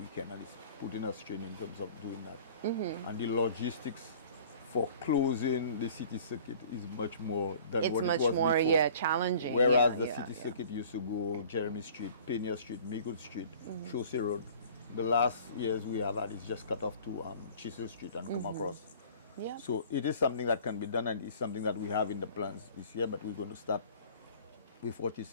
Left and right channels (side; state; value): both; inverted; correlation -0.48